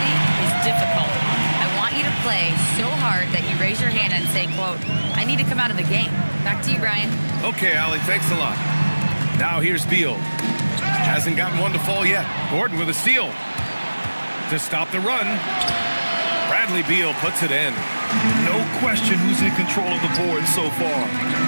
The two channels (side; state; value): both; inverted; correlation -1.00